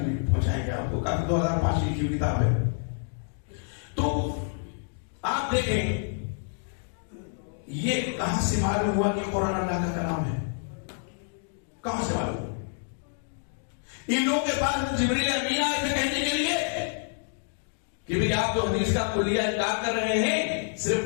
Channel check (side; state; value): right; silent; digital silence